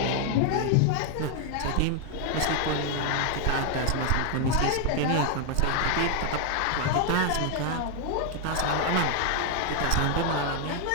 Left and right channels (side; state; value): both; different; correlation 0.00